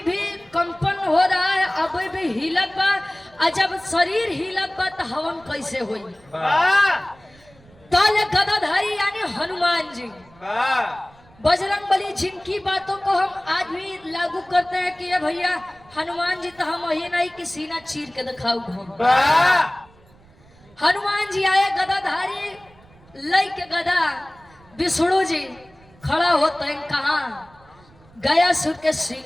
भी कंपन हो रहा है, अभी भी हिलत बा, और जब शरीर हिलत बा तो हवन कैसे होई? ताले गदाधारी यानी हनुमान जी, बजरंगबली, जिनकी बातों को हम आज भी लागू करते हैं कि ये भैया हनुमान जी तो हम यही नहीं कि सीना चीर के दिखाऊ हम। हनुमान जी आए गदाधारी लई के गदा, विष्णु जी खड़ा होते हैं कहाँ? गयासुर के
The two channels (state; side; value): noise; right; rumble, 27 dB below the sound